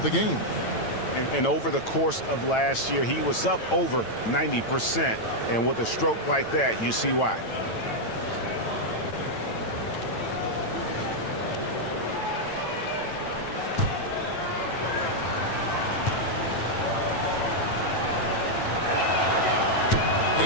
the game. And over the course of last year, he was up over 90%. And with a stroke like that, you see why.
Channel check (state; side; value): late; right; 9.0 ms